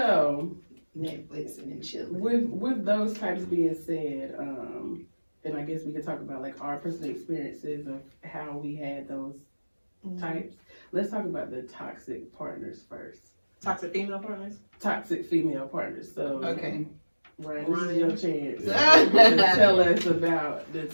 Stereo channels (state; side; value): inverted; both; correlation -1.00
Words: Netflix and then chilling. with those types being said, and I guess we could talk about like our personal experiences of how we had those types. Let's talk about the toxic partners first. Toxic female partners. Toxic female partners. So Okay. Ryan, this is your chance Yeah. to tell us about the